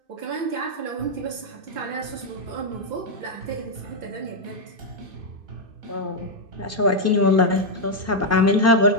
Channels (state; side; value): late; left; 2.6 ms